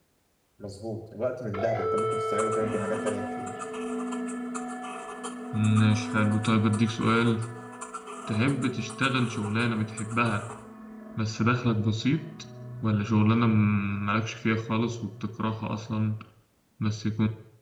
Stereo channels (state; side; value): identical; both; correlation 1.00